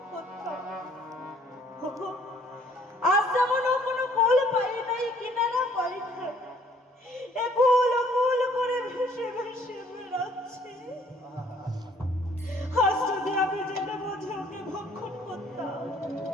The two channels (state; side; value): normal; both; correlation 0.60